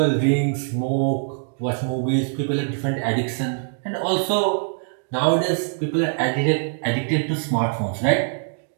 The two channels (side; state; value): left; silent; digital silence